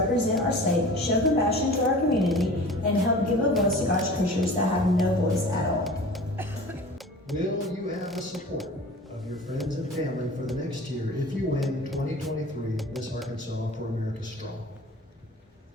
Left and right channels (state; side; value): normal; both; correlation 0.41